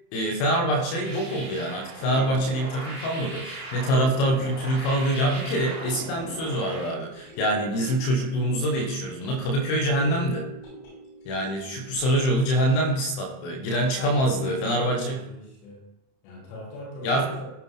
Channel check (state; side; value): late; right; 30 ms